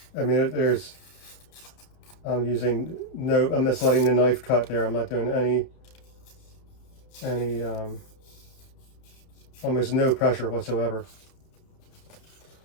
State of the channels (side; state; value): right; late; 31 ms